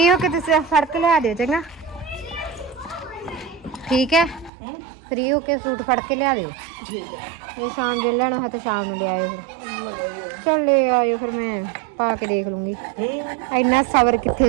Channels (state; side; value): drops out; left; at 4.5 s